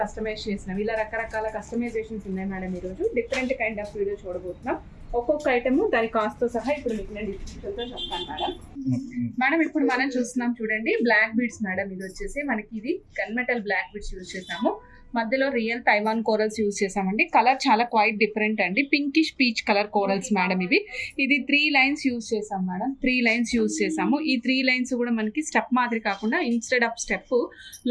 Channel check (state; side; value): identical; both; correlation 1.00